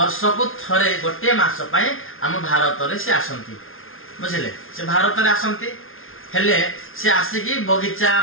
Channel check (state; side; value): late; right; 0.60 ms